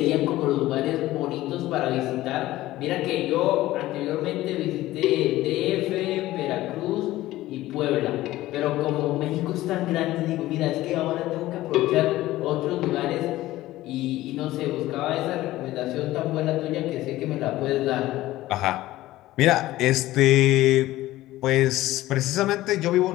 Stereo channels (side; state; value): right; quieter; 16.2 dB